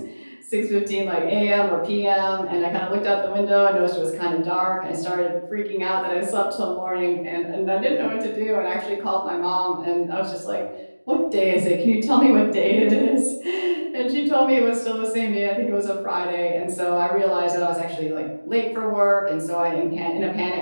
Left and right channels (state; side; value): inverted; both; correlation -1.00